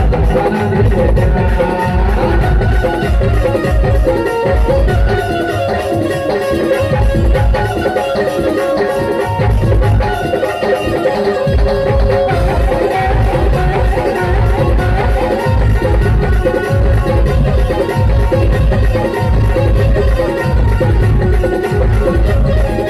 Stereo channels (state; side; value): identical; both; correlation 1.00